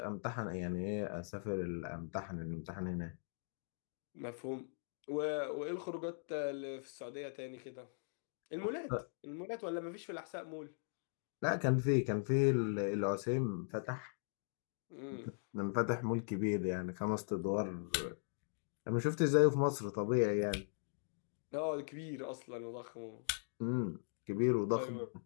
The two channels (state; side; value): silent; right; digital silence